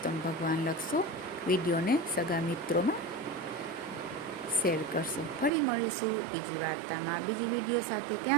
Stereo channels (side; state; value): left; drops out; at 5.5 s